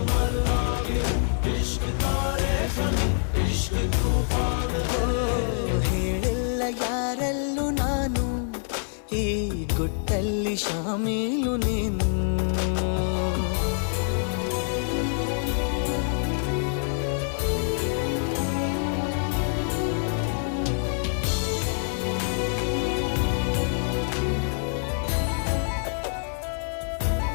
मरना भी है, इश्क तारे ज़मीं, इश्क तूफान है। ಹೇಳಿಲ್ಲ ಯಾರಲ್ಲೂ ನಾನು ಈ ಗುಟ್ಟಲ್ಲಿ ಶಾಮೀಲು ನೀನು.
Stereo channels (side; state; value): right; silent; 58 dB below the other